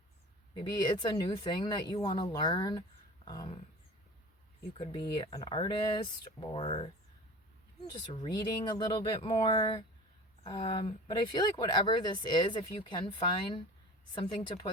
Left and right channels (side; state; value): both; normal; correlation 0.38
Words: Maybe it's a new thing that you want to learn. You could be an artist, or just reading a little bit more. But I feel like whatever this is, if you can find something to